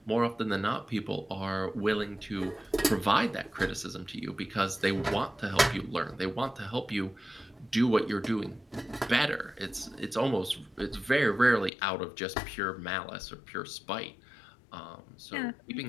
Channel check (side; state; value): right; drops out; at 11.7 s